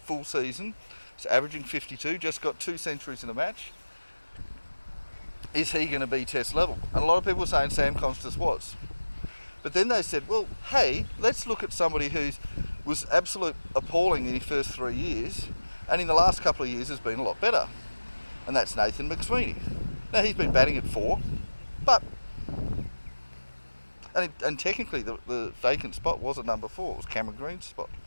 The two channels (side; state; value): both; inverted; correlation -1.00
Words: full season, is averaging 52, just got 2 centuries in a match. Is he going to be Test level? And a lot of people were saying Sam Constance was. But then they said, well, hey, let's look at somebody who was absolute appalling in his first 3 years, and in the last couple of years has been a lot better. And that's Nathan McSweeney. Now, he's been batting at 4, but... And technically the vacant spot was at number 4, it was Cameron Green's spot.